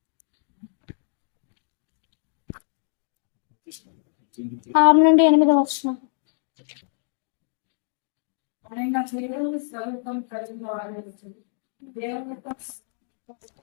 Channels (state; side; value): silent; right; digital silence